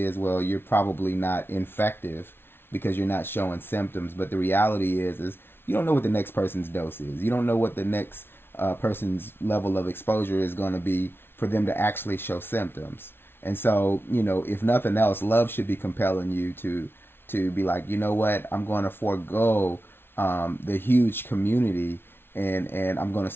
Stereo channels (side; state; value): right; late; 0.11 ms